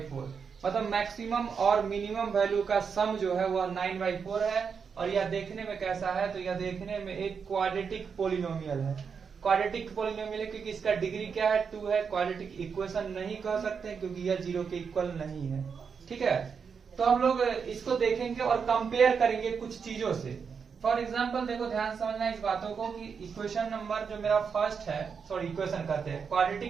मतलब maximum और minimum value का सम जो है वह 9/4 है। और यह देखने में कैसा है, तो यह देखने में एक क्वाड्रेटिक पोलिनोमियल है। क्वाड्रेटिक पोलिनोमियल है क्योंकि इसका डिग्री क्या है, 2 है। क्वाड्रेटिक इक्वेशन नहीं कह सकते क्योंकि यह 0 के इक्वल नहीं है। ठीक है, तो हम लोग इसको देखेंगे और कंपेयर करेंगे कुछ चीजों से। फॉर एग्जाम्पल देखो, ध्यान समझना इस बातों को कि इक्वेशन नंबर जो मेरा फर्स्ट है, सॉरी इक्वेशन कहते हैं,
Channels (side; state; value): left; quieter; 6.1 dB